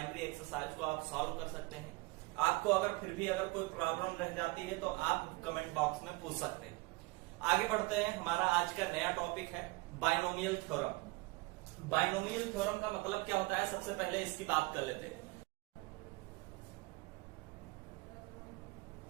एक्सरसाइज को आप सॉल्व कर सकते हैं। आपको अगर फिर भी अगर कोई प्रॉब्लम रह जाती है तो आप कमेंट बॉक्स में पूछ सकते हैं। आगे बढ़ते हैं। हमारा आज का नया टॉपिक है बाइनोमियल थ्योरम। बाइनोमियल थ्योरम का मतलब क्या होता है, सबसे पहले इसकी बात कर लेते हैं।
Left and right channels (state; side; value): quieter; left; 23.7 dB